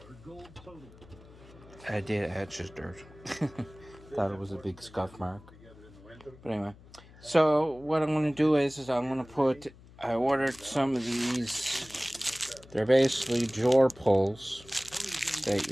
did. I just dirt. Thought it was a big scuff mark. But anyway, so what I'm going to do is I'm going to I ordered some of these, they're basically drawer pulls that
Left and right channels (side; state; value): left; noise; hum, 22 dB below the sound